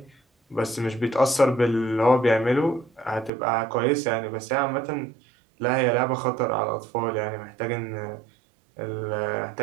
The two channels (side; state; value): left; drops out; at 3.3 s